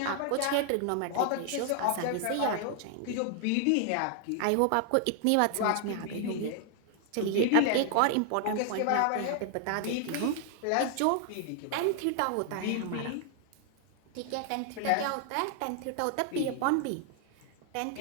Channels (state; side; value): different; both; correlation 0.00